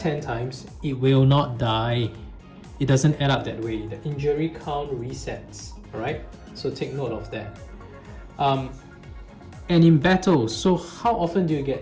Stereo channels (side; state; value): both; identical; correlation 1.00